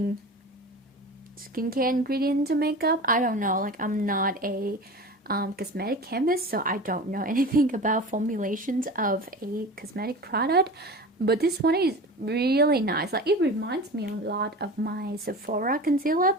skincare ingredient into makeup. I don't know. Like I'm not a cosmetic chemist, so I don't know anything about formulations of a cosmetic product, but this one is really nice. Like it reminds me a lot of my Sephora concealer,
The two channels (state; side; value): normal; both; correlation 0.34